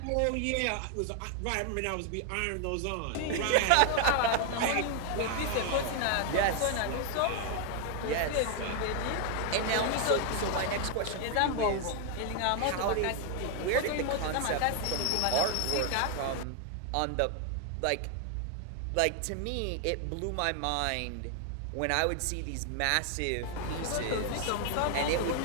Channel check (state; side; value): different; both; correlation 0.00